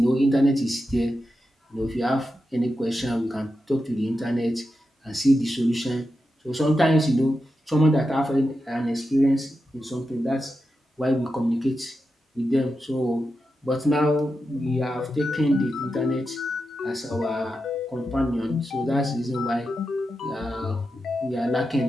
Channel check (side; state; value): both; normal; correlation 0.89